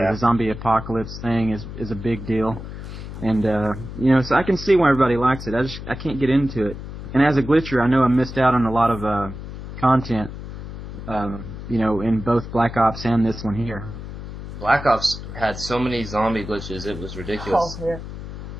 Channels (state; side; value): noise; left; hum, 10 dB below the sound